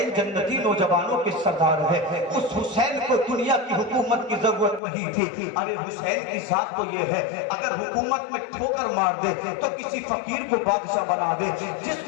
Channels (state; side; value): drops out; right; at 4.8 s